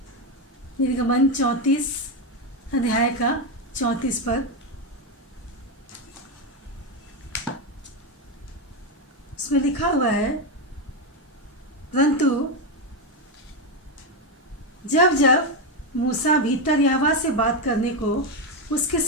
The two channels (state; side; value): normal; both; correlation 0.09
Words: निर्गमन 34 अध्याय का 34 पद, उसमें लिखा हुआ है, परंतु जब जब मूसा भीतर यहोवा से बात करने को उसके